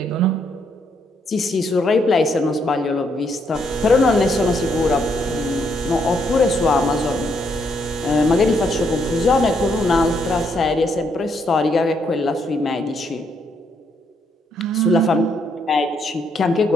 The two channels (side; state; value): both; normal; correlation 0.74